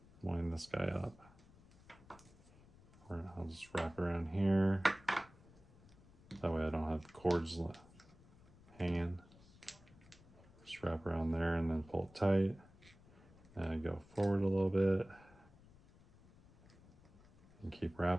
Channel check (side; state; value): left; noise; rumble, 24 dB below the sound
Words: Wind this guy up. I'll just wrap around here. That way I don't have the cords hanging. Just wrap around there and then pull it tight. And go forward a little bit. And keep